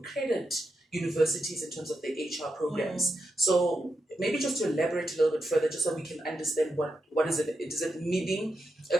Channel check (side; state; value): both; normal; correlation 0.86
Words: universities in terms of the HR programs. So maybe just to elaborate a little bit further, just so we can understand what is it? Is it meaning